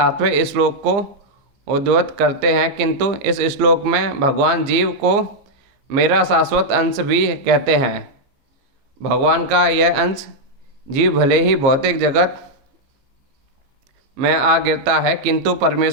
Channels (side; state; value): left; late; 15 ms